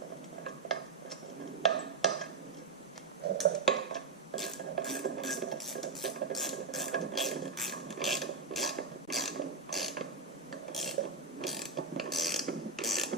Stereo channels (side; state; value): left; quieter; 4.4 dB